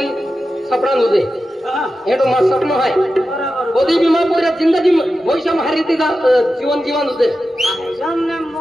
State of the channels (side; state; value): both; normal; correlation 0.92